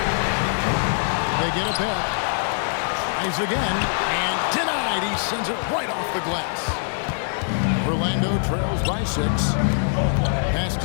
They get it back. Tries again, and denied. He sends it right off the glass. Orlando trails by 6. Pass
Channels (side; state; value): right; silent; digital silence